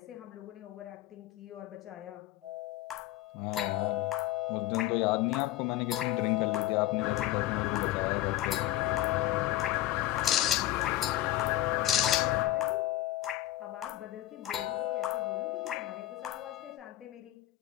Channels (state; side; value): quieter; right; 14.4 dB